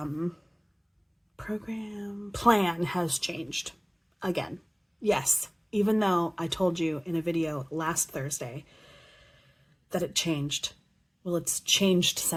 program plan has changed again. Yes, even though I told you in a video last Thursday that it changed. Well, it's changed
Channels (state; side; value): identical; both; correlation 1.00